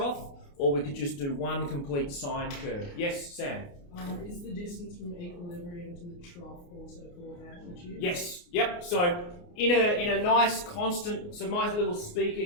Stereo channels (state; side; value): late; right; 29 ms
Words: or we could just do one complete sine curve. Yes, Sam? Is the distance from equilibrium to the trough also called amplitude? Yes. Yep. So in a nice constant. So my little speaker